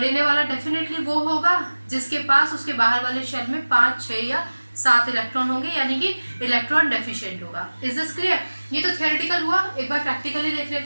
वाला डेफिनेटली वो होगा जिसके पास उसके बाहर वाले शेल में 5, 6 या 7 इलेक्ट्रॉन होंगे, यानी कि इलेक्ट्रॉन डेफिशिएंट होगा। Is this clear? ये तो थियोरेटिकल हुआ, एक बार प्रैक्टिकली देख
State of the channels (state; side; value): inverted; both; correlation -1.00